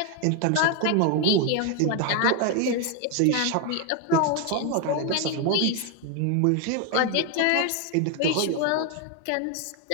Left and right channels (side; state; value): both; different; correlation 0.01